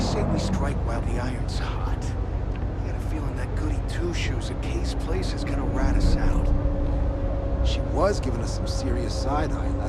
we strike while the iron's hot. I got a feeling that goody two-shoes at Kay's place is gonna rat us out. She was giving us some serious side-eye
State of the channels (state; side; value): identical; both; correlation 1.00